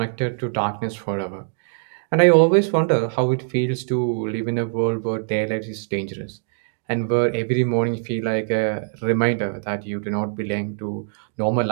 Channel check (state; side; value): silent; left; digital silence